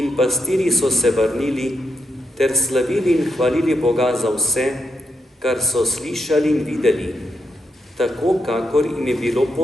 pastirji so se vrnili ter slavili in hvalili Boga za vse, kar so slišali in videli, tako kakor jim je bilo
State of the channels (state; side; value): normal; both; correlation 0.83